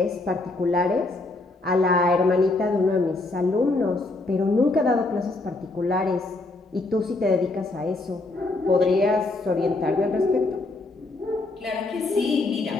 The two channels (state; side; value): quieter; right; 3.1 dB